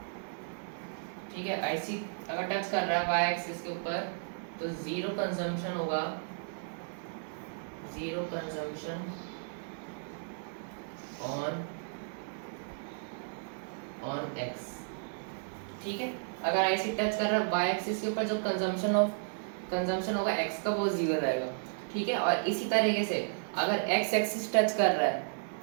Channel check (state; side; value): silent; left; 55 dB below the other